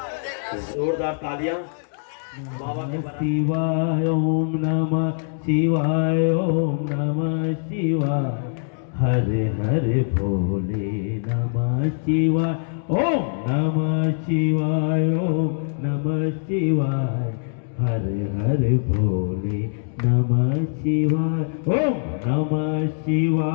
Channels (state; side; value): silent; right; digital silence